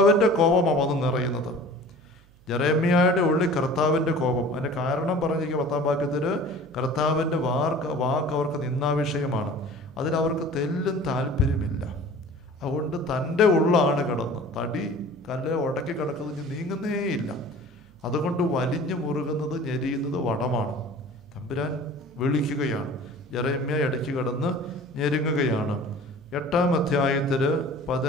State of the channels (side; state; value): right; noise; hum, 28 dB below the sound